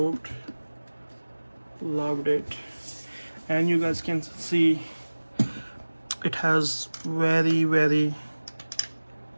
Loved it. And you guys can see it has very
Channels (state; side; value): inverted; both; correlation -1.00